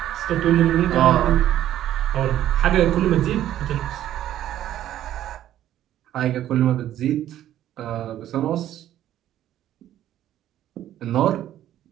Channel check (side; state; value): left; quieter; 12.3 dB